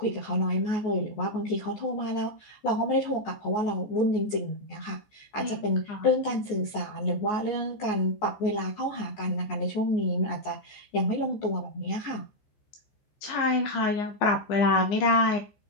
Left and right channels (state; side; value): late; right; 14 ms